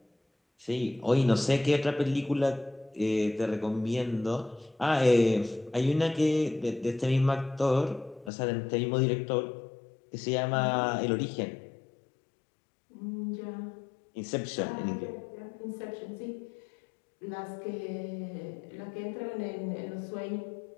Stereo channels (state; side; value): drops out; right; at 8.3 s